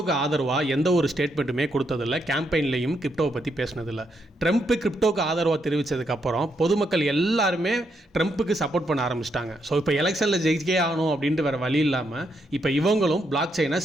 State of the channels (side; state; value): both; normal; correlation 0.78